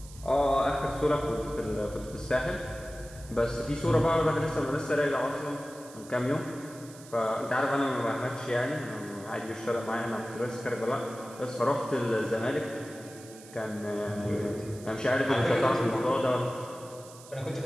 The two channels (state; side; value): noise; right; hiss, 19 dB below the sound